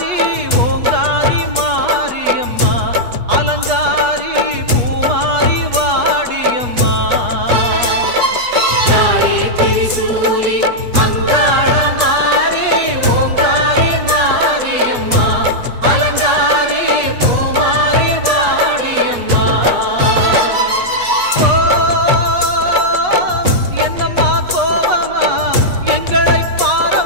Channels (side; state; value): left; late; 8.3 ms